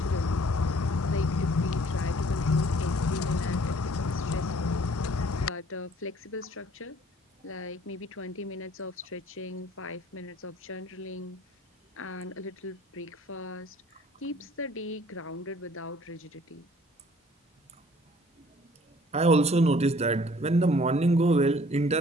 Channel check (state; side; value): normal; both; correlation 0.56